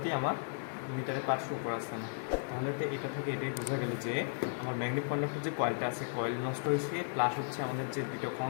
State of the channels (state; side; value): silent; right; digital silence